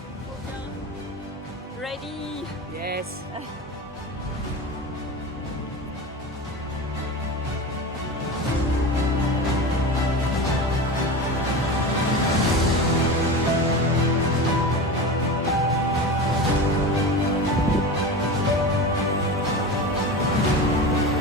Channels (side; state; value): both; normal; correlation 0.27